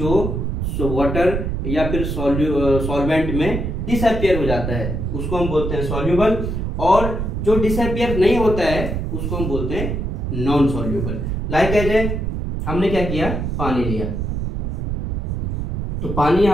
वाटर या फिर सॉल्वेंट में डिसअपियर हो जाता है उसको हम बोलते हैं सॉल्युबल, और जो डिसअपियर नहीं होता है उसको हम बोलते हैं नॉन सॉल्युबल। लाइक एज हमने क्या किया, पानी लिया, तो पानी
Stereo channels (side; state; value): right; noise; rumble, 2 dB below the sound